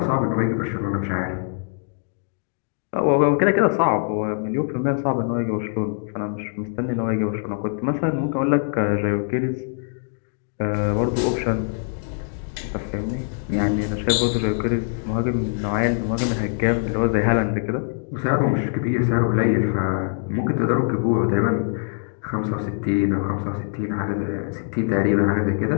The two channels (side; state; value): right; silent; 62 dB below the other